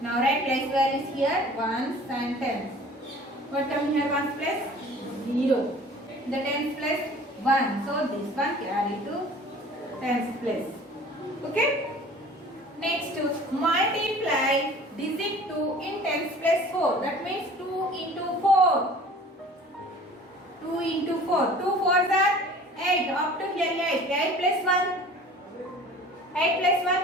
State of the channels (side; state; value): both; normal; correlation 0.46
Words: Now write place values here ones and tens. What comes here ones place? 0. The tens place 1. So this one carry to tens place. Okay. Next, multiply digit 2 in tens place 4. That means 2 into 4. 2 into 4. 2 4s are 8. Up to here 8. 8 plus 1. 8 plus